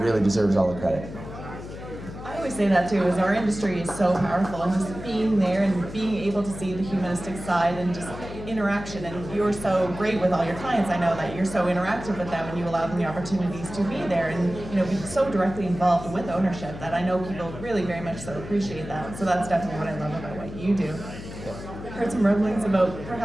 really deserves all the credit. I always say that too, is our industry is so powerful, and just being there and being able to see the humanistic side and just interaction. And you're so great with all your clients. I know that you're so interactive with them and you allow them the opportunities to be there and, you know, be so directly involved with ownership that I know people really very much so appreciate that. So that's definitely what I love about what you do. I've heard some rumblings about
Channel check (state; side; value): noise; left; hum, 11 dB below the sound